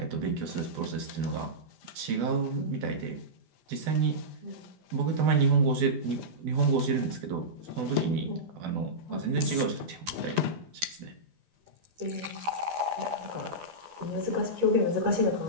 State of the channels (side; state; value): left; late; 12 ms